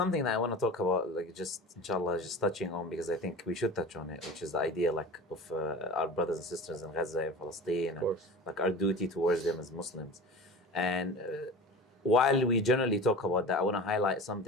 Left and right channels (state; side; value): normal; both; correlation 0.35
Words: that I want to talk about, inshallah, just touching on, because I think we should touch on it, which is the idea of our brothers and sisters in Gaza and Palestine, and our duty towards them as Muslims. And while we generally talk about that, I want to highlight